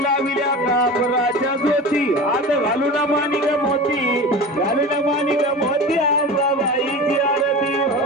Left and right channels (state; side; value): normal; both; correlation 0.32